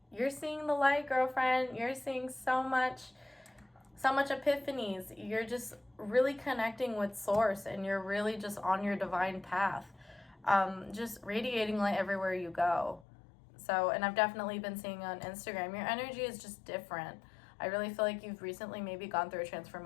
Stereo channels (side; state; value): right; drops out; at 13.1 s